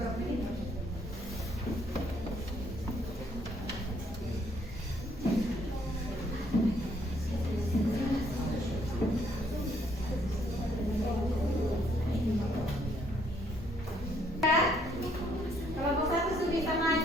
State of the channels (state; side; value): normal; both; correlation 0.68